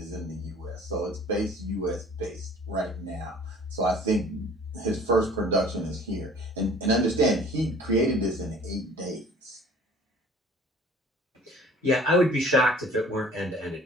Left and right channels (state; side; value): normal; both; correlation 0.50